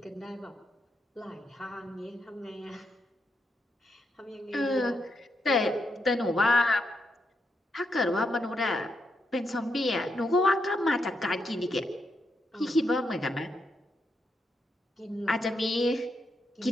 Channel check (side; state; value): both; normal; correlation 0.82